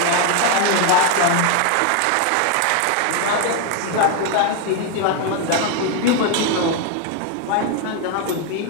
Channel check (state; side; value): different; both; correlation 0.01